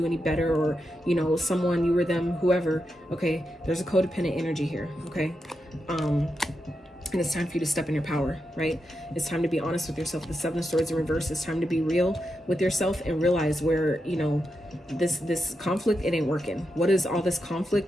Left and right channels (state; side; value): normal; both; correlation 0.86